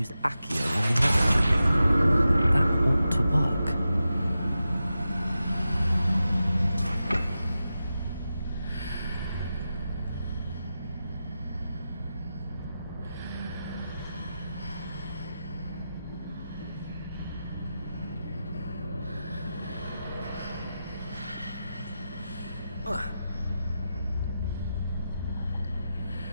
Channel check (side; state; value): both; inverted; correlation -0.91